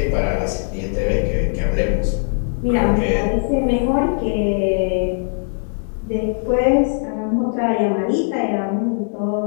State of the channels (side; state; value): right; silent; 58 dB below the other